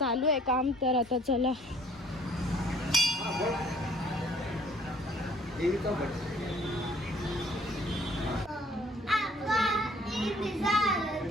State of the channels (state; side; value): normal; both; correlation 0.58